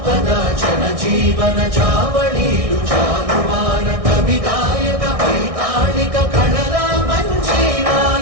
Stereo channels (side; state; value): left; late; 1.6 ms